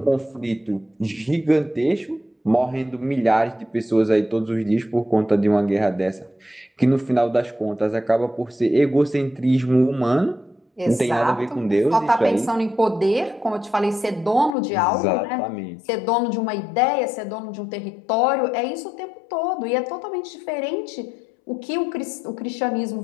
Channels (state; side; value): drops out; right; at 14.6 s